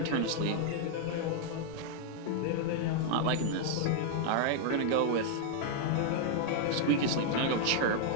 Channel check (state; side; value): different; both; correlation -0.01